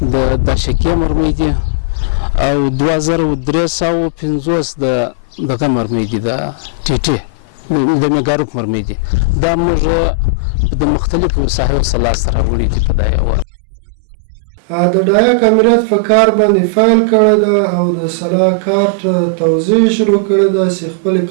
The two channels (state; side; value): drops out; left; at 13.5 s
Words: د داشکې مرمۍ دي او 2350 د دغه مرمۍ دي، د ټیټي د میګاروک مرمۍ دي. دا موږ د مختلفو ساحو سره سره وړي دي په دا یو تیرمالي کال کې. د ډایک امریت په کار باندې فایل کړی ده او د سلا کارت توزیع شروع کړی ده چې خپل